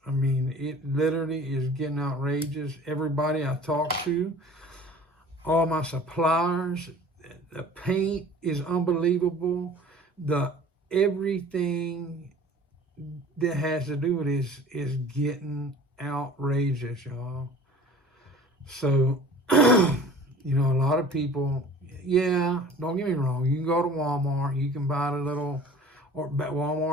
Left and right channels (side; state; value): both; normal; correlation 0.45